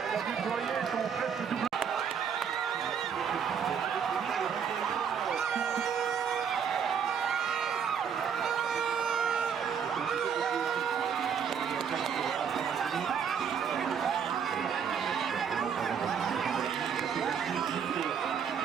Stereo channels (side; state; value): left; quieter; 7.3 dB